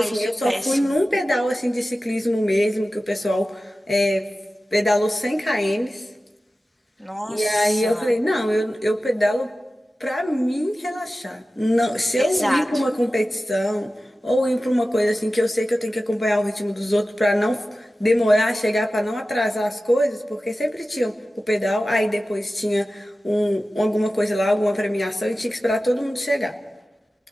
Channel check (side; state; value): both; normal; correlation 0.95